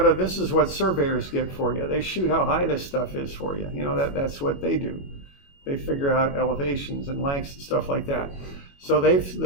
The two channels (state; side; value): late; right; 21 ms